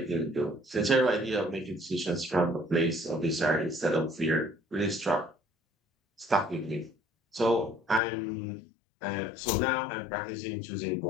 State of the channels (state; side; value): drops out; right; at 8.0 s